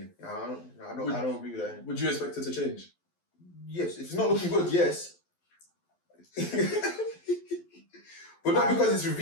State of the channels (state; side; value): late; right; 12 ms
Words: I don't agree with that. Would you expect it to change? Yes. If it's not looking good, yes. But not because it's